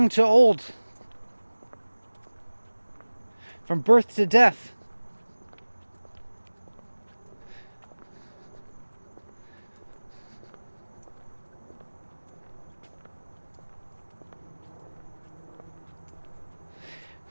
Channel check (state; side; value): inverted; both; correlation -1.00